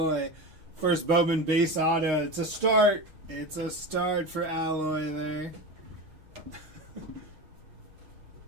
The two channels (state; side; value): late; left; 6.4 ms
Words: First Bowman base auto. It's a start. It's a start for Alloy there.